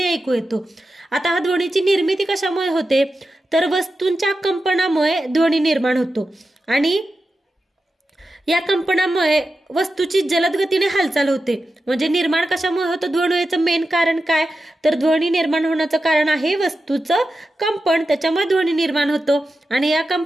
ऐकू येतो। आता हा ध्वनीची निर्मिती कशामुळे होते? तर वस्तूंच्या कंपनामुळे ध्वनी निर्माण होतो आणि या कंपनामुळे वस्तूची जलद गतीने हालचाल होते। म्हणजे निर्माण कशामुळे होतं? ध्वनीचं मेन कारण काय? तर ध्वनी निर्माण होण्याचं कारण आहे वस्तूचं कंपन, त्याच्यामुळे ध्वनी निर्माण होतो आणि या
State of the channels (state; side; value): normal; both; correlation 0.91